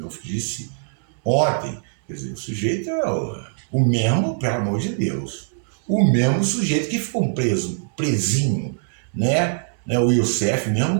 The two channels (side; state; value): left; silent; 63 dB below the other